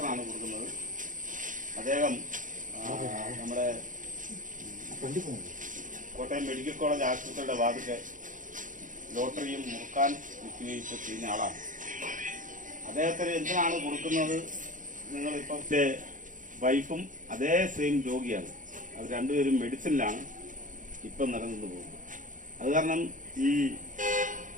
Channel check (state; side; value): late; left; 0.38 ms